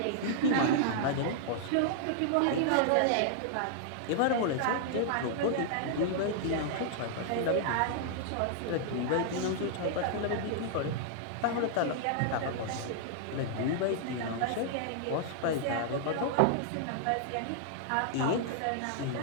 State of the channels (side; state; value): both; different; correlation -0.01